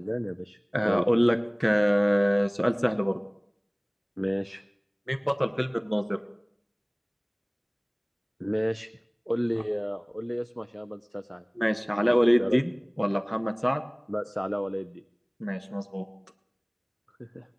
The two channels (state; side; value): identical; both; correlation 1.00